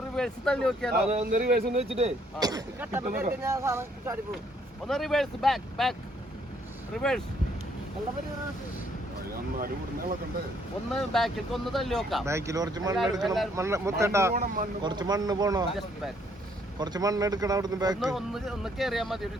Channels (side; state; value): both; normal; correlation 0.67